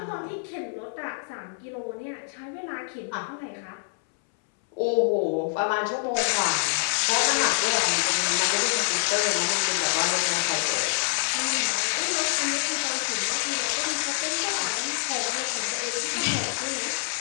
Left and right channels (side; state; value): right; silent; 60 dB below the other